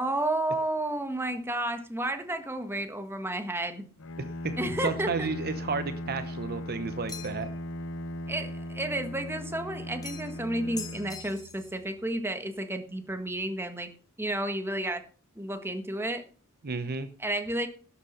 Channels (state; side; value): normal; both; correlation 0.50